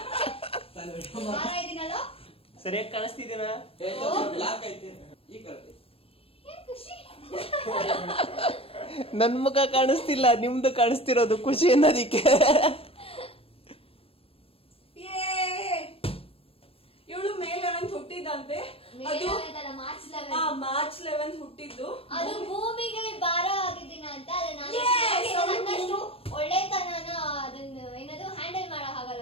ಸರಿಯಾಗಿ ಕಾಣಿಸ್ತಿದ್ದೀನ? ನನ್ ಮುಖ ಕಾಣಿಸ್ತಿಲ್ಲ, ನಿಮ್ದು ಕಾಣಿಸ್ತಿರೋದು ಖುಷಿ ಅನ್ನೋದಿಕ್ಕೆ. ಇವಳು ಮೇ 11 ಹುಟ್ಟಿದಂತೆ, ಅದು ಮಾರ್ಚ್ 11 ಹುಟ್ಟಿದ್ದು. ಅದು ಭೂಮಿಗೆ ಭಾರ ಆಗಿದ್ದೀನ ಅಂತ. ನನ್ನಷ್ಟು ಒಳ್ಳೆತನನ ಅದನ್ನ ಏನದು ಹ್ಯಾಂಡಲ್ ಮಾಡಕ್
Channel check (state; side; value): late; right; 0.27 ms